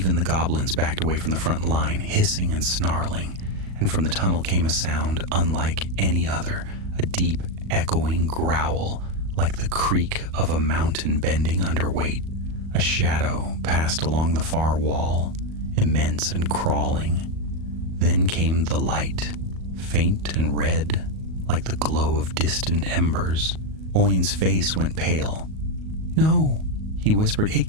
the goblins backed away from the front line, hissing and snarling, and from the tunnel came a sound unlike any other, a deep, echoing growl, like the creak of a mountain bending under weight. A shadow passed along the far wall, immense and crawling. Then came the light, faint and red, like the glow of distant embers. Owen's face went pale. "No," he whispered, "it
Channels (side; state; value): left; late; 38 ms